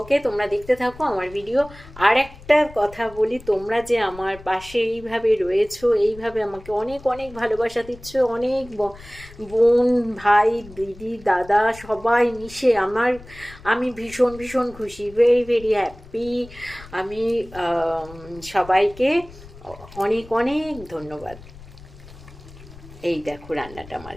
তোমরা দেখতে থাকো আমার ভিডিও। আর একটা কথা বলি, তোমরা যে আমার পাশে এইভাবে রয়েছো, এইভাবে আমাকে অনেক অনেক ভালোবাসা দিচ্ছ, অনেক বোন ভাই দিদি দাদা সবাই মিশে আমি ভীষণ ভীষণ খুশি, ভেরি ভেরি হ্যাপি। আমি সবাইকে অনেক অনেক ধন্যবাদ। এই দেখো রান্নাটা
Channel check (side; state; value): left; noise; rumble, 19 dB below the sound